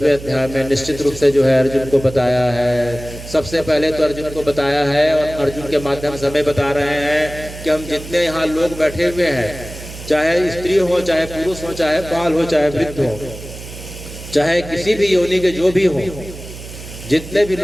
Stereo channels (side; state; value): right; noise; hum, 13 dB below the sound